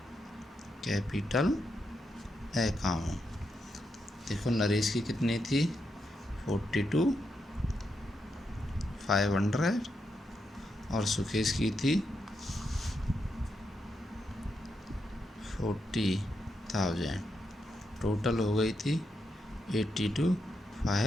capital account. देखो नरेश की कितनी थी 42,500 और सुकेश की थी 40,000, टोटल हो गई थी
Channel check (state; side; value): normal; both; correlation 0.83